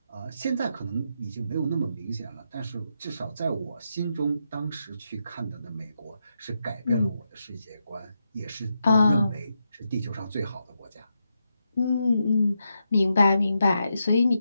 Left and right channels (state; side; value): inverted; both; correlation -0.84